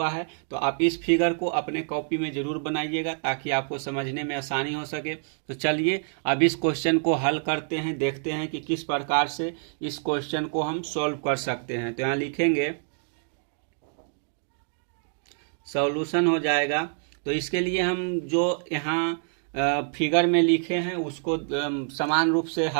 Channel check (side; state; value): left; silent; digital silence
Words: है। तो आप इस फिगर को अपने कॉपी में जरूर बनाइएगा ताकि आपको समझने में आसानी हो सके। तो चलिए अब इस क्वेश्चन को हल करते हैं, देखते हैं कि किस प्रकार से इस क्वेश्चन को हम सॉल्व कर सकते हैं। तो यहाँ लिखेंगे सॉल्यूशन हो जाएगा। तो इसके लिए हम जो यहाँ फिगर में लिखे हैं उसको समान रूप से